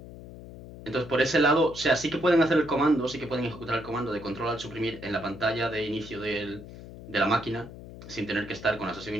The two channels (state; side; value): noise; left; hum, 15 dB below the sound